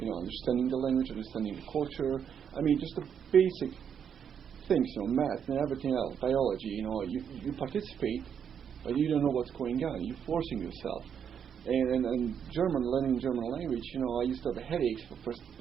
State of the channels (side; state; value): left; quieter; 7.8 dB